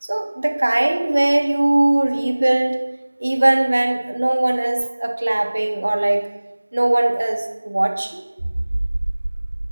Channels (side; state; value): both; inverted; correlation -1.00